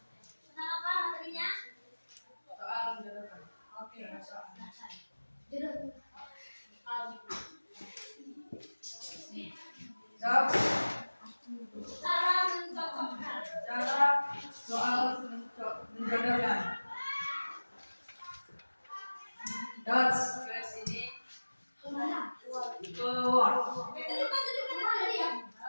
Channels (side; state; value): both; inverted; correlation -1.00